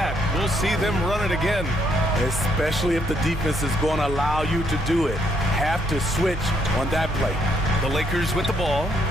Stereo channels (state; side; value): normal; both; correlation 0.72